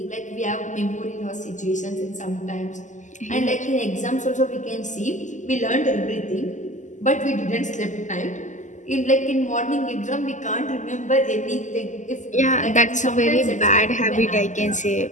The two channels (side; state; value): right; late; 0.36 ms